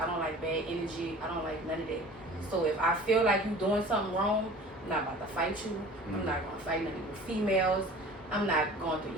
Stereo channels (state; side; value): normal; both; correlation 0.43